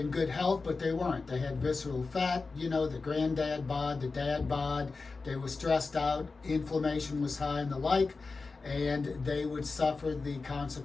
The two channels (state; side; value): quieter; right; 4.1 dB